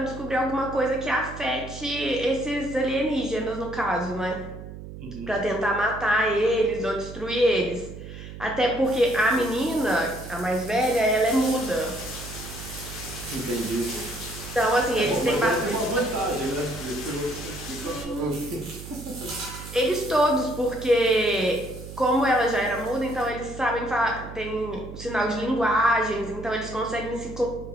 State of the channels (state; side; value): noise; right; hum, 12 dB below the sound